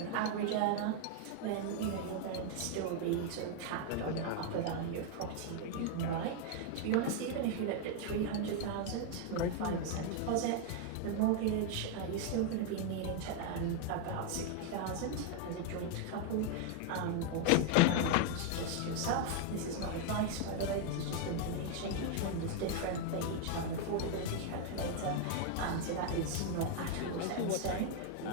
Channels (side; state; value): both; different; correlation 0.00